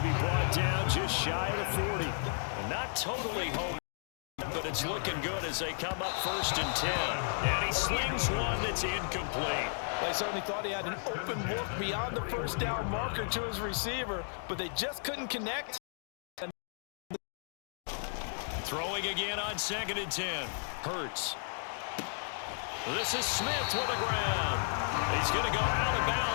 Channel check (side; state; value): right; silent; digital silence